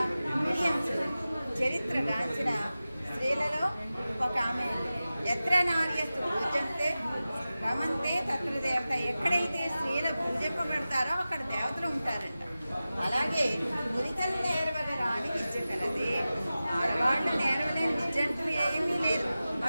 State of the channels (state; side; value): inverted; both; correlation -0.95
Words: విలియమ్స్ చరిత్రగాంచిన స్త్రీలలో ఒక ఆమె. ఎత్ర నార్యస్తు పూజంతే రమంతే తత్ర దేవత. ఎక్కడైతే స్త్రీలు పూజింపబడతారో అక్కడ దేవతలు ఉంటారంట. అలాగే మురితలు నేర్వగరాని విద్య కలది. ఆడవాళ్ళు నేర్వలేని విద్య అంటూ ఏమీ లేదు.